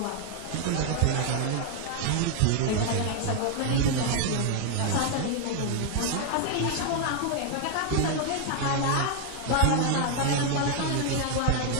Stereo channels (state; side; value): different; both; correlation 0.00